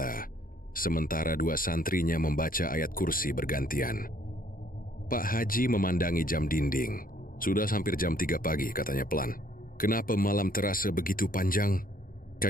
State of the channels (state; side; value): late; right; 0.41 ms